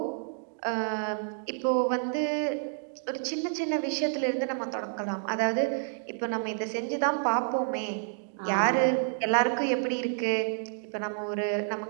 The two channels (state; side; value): silent; left; digital silence